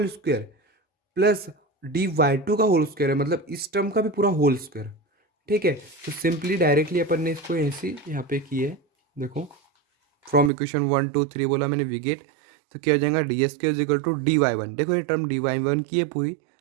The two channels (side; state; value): left; drops out; at 10.5 s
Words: square, plus D Y two का होल स्क्वायर है, मतलब इस टर्म का भी पूरा होल स्क्वायर, ठीक है। तो सिंपली डायरेक्टली अपन ने इसको ऐसे यहाँ पे किया है, देखो from equation one two three बोला मैंने वी गेट, तो क्या हो जाएगा, d s square is equal to d Y one, देखो ये टर्म डी वाई वन की है पूरी,